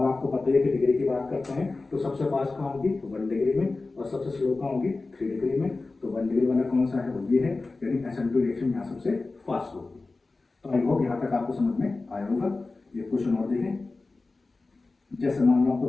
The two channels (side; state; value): right; quieter; 3.5 dB